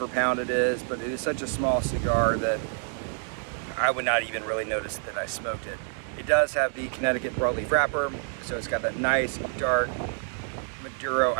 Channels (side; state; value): left; silent; 56 dB below the other